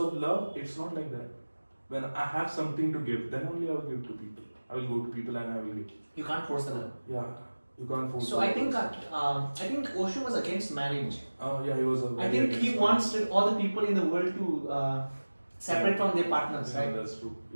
love, it's not like that. When I have something to give, then only I will give to people. I will go to people and I will give. You can't force the love. Yeah, you can't force. So I think Osho was against marriage. Yeah, he was. I think he wants all the people in the world to separate from their partners, Yeah, right? that's true.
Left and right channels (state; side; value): inverted; both; correlation -1.00